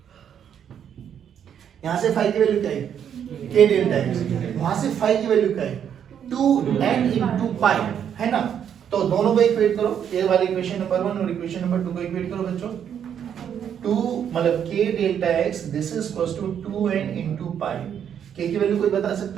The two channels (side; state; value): left; quieter; 8.7 dB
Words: यहां से फाई की वैल्यू क्या है? k delta x। वहां से फाई की वैल्यू क्या है? 2n into पाई, है ना? तो दोनों को इक्वेट करो, ये वाली इक्वेशन नंबर 1 और इक्वेशन नंबर 2 को इक्वेट करो बच्चों। 2 मतलब k delta x this is equals to 2n into pi. k की वैल्यू कोई बता